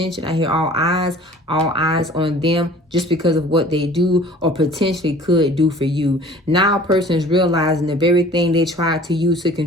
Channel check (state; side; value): normal; both; correlation 0.48